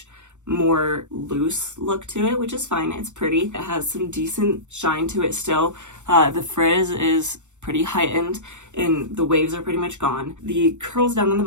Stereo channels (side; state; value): left; late; 0.84 ms